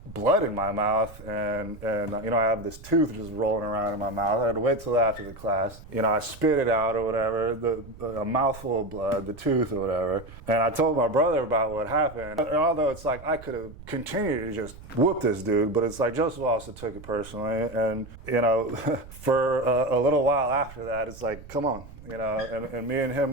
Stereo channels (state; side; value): noise; right; rumble, 17 dB below the sound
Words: blood in my mouth, and I have this tooth just rolling around in my mouth. I had to wait till after the class. I spit it out or whatever, a mouthful of blood, the tooth or whatever. And I told my brother about what happened. And although it's I could have continued to just whoop this dude, but it's Joseph also took it personally. And, for a little while after that, it's come on, and me and